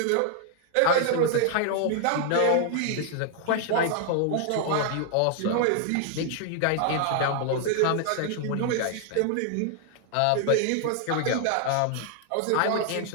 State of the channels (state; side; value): different; both; correlation 0.00